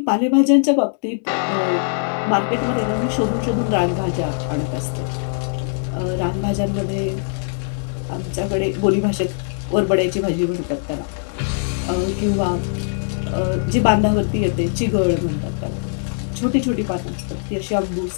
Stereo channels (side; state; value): right; silent; digital silence